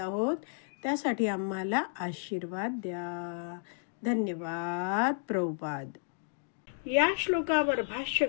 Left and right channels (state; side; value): silent; right; digital silence